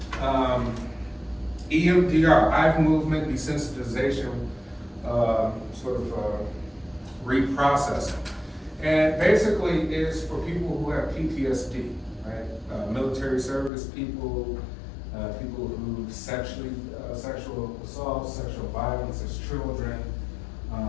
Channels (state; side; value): drops out; right; at 13.7 s